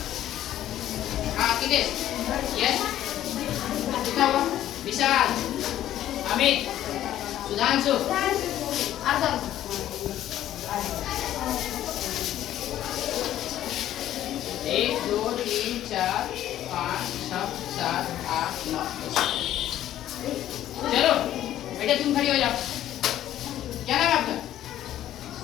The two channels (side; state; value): right; quieter; 12.4 dB